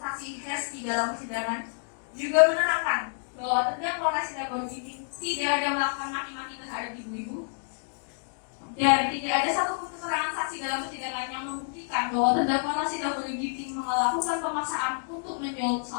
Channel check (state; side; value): silent; right; digital silence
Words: Hesti dalam persidangan, juga menerangkan bahwa terdakwa Rasita Boy Ginting tidak ada melakukan maki-maki terhadap ibu-ibu, dan tidak ada satupun keterangan saksi dalam persidangan yang membuktikan bahwa terdakwa Rasita Boy Ginting melakukan pemaksaan untuk menjual